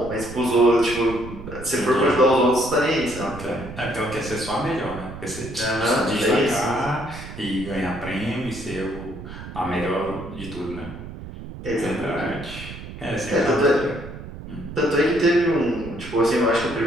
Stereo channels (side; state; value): right; noise; rumble, 12 dB below the sound